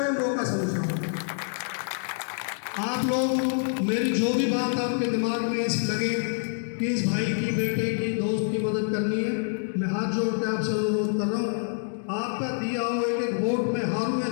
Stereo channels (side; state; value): right; silent; digital silence